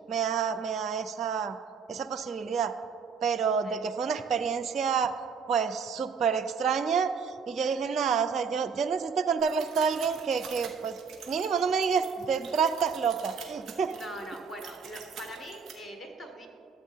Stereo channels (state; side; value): quieter; left; 5.9 dB